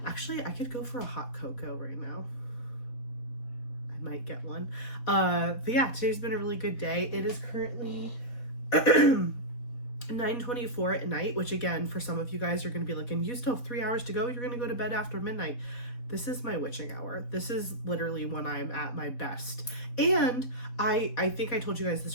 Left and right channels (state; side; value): late; right; 4.2 ms